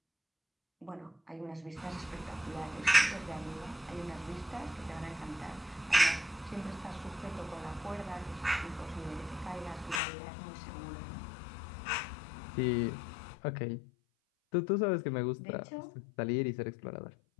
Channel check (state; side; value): drops out; right; at 10.0 s